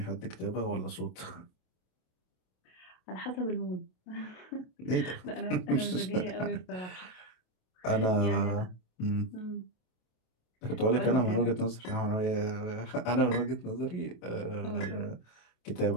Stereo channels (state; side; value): late; right; 27 ms